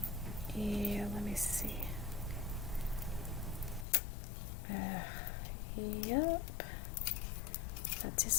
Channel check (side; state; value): right; drops out; at 3.9 s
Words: Yeah, let me see. Yep. That